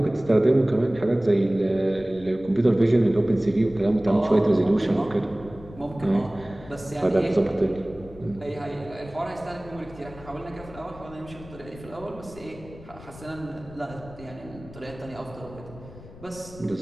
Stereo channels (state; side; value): noise; left; rumble, 18 dB below the sound